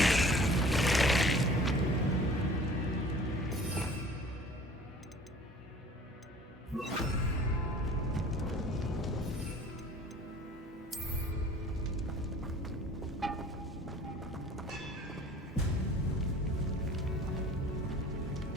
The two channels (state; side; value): normal; both; correlation 0.47